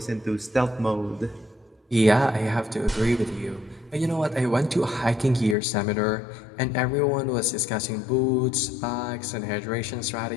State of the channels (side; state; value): right; drops out; at 5.6 s